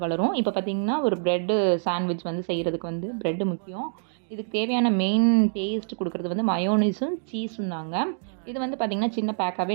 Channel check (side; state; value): left; silent; digital silence